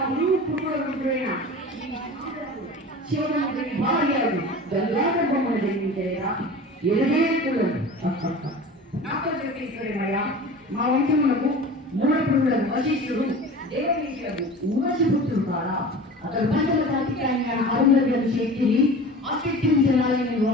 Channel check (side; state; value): both; normal; correlation 0.37